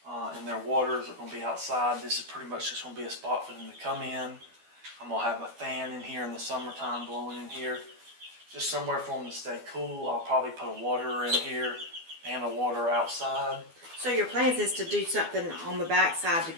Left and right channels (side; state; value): left; late; 12 ms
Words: and their waters are gonna be outside. This is pretty much just gonna be a spot for them to come in. I'm gonna have a fan in here in the summertime blowing in here, just somewhere for them to stay cool. I'll probably put a waterer in here and a water outside. So your plans is to do something on the back side to